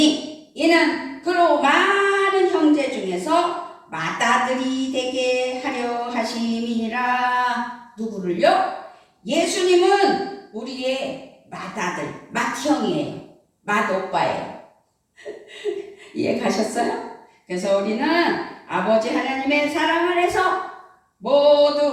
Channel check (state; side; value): identical; both; correlation 1.00